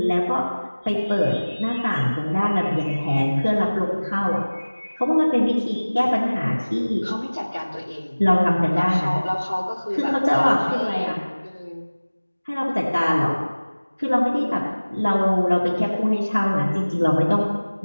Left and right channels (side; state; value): both; inverted; correlation -1.00